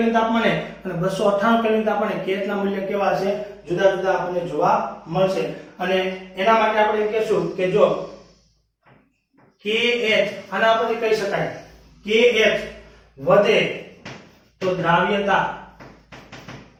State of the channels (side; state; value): both; identical; correlation 1.00